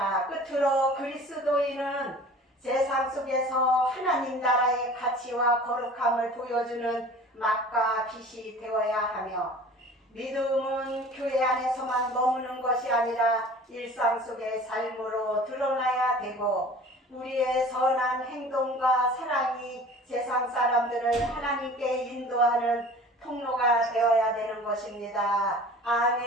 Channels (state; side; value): normal; both; correlation 0.44